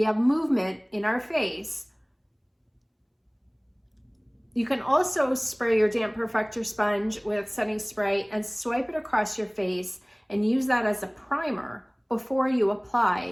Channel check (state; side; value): identical; both; correlation 1.00